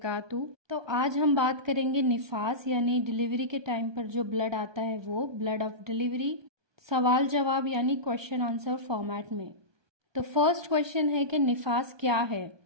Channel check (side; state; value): left; late; 1.2 ms